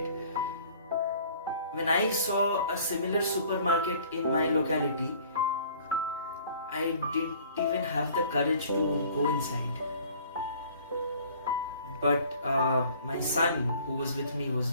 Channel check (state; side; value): inverted; both; correlation -0.52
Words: When I saw a similar supermarket in my locality, I didn't even have the courage to go inside. But my son, who was with me, was